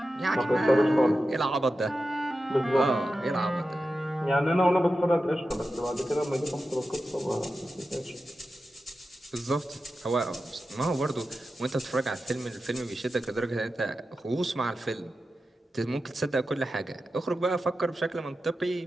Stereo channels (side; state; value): both; normal; correlation 0.92